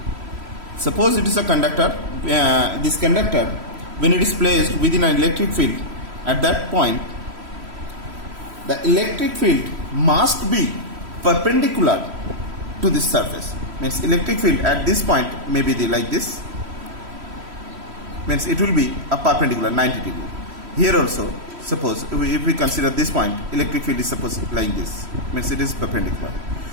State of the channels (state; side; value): late; left; 3.1 ms